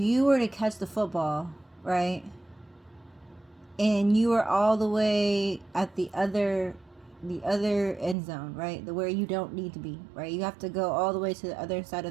were to catch the football, right, and you were all the way at the other end zone, right, where you don't need to be, right, you have to go all the way to the other side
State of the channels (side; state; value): left; drops out; at 8.2 s